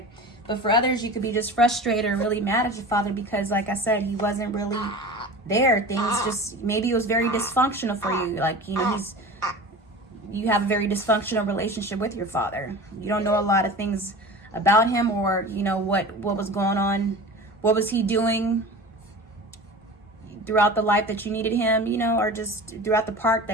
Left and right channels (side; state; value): both; normal; correlation 0.35